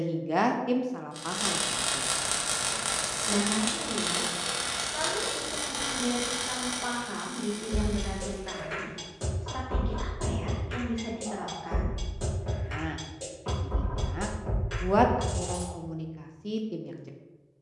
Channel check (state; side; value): identical; both; correlation 1.00